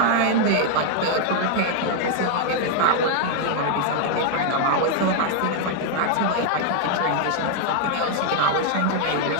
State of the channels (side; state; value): both; different; correlation 0.00